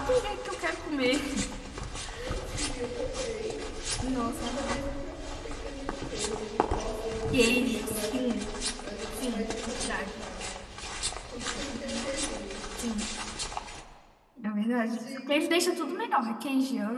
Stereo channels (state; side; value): identical; both; correlation 1.00